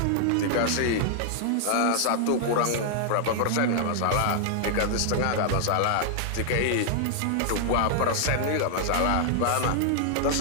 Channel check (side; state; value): both; different; correlation -0.01